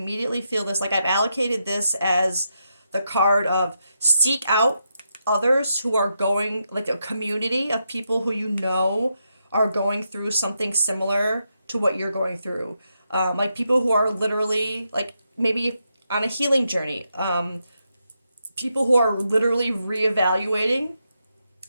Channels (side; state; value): both; inverted; correlation -0.83